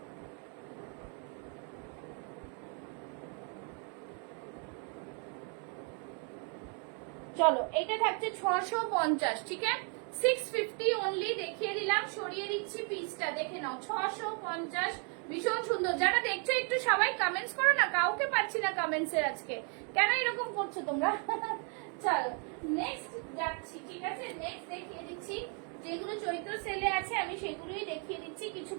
চলো, এটা থাকছে 650, ঠিক আছে? 650 অনলি দেখিয়ে দিলাম, সরিয়ে দিচ্ছি পিসটা, দেখে নাও, 650, ভীষণ সুন্দর। যারা দেখছো একটু সবাই কমেন্টস করো না, কাউকে পাচ্ছি না কমেন্টস এর আজকে, কেন এরকম করছো তোমরা? চলো, নেক্সট যাচ্ছি, ঠিক আছে? নেক্সট দেখিয়ে দিচ্ছি, যেগুলো চৈত্র সেলে আছে আমি সেগুলোই দেখিয়ে দিচ্ছি, কিছু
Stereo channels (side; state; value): left; quieter; 39.5 dB